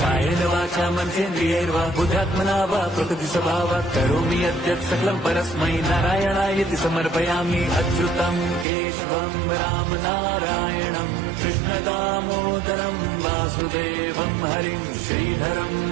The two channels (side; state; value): left; drops out; at 8.7 s